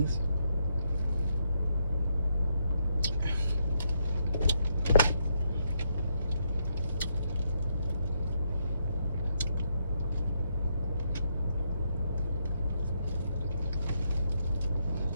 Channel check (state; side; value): inverted; both; correlation -0.77